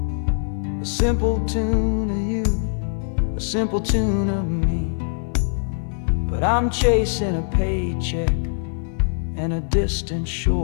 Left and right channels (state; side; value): silent; right; 64 dB below the other